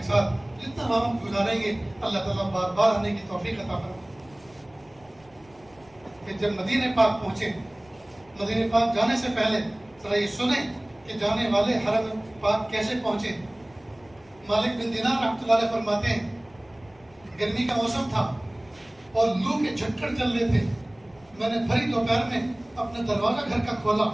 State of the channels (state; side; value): noise; left; rumble, 29 dB below the sound